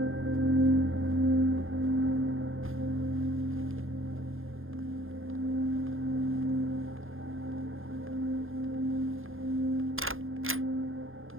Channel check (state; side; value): late; left; 0.60 ms